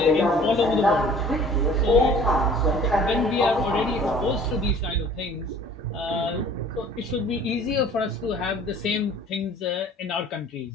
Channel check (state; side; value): normal; both; correlation 0.50